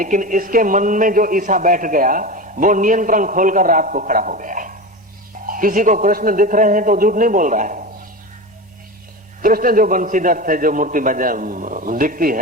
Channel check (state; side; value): normal; both; correlation 0.25